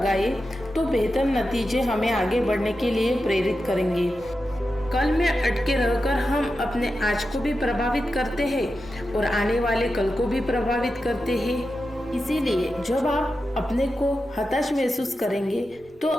तो बेहतर नतीजे हमें आगे बढ़ने के लिए प्रेरित करेंगे। कल में अटके रहकर हम अपने आज को भी प्रभावित करते हैं और आने वाले कल को भी प्रभावित करते हैं। इसीलिए जब आप अपने को हताश महसूस करेंगे तो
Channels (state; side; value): normal; both; correlation 0.90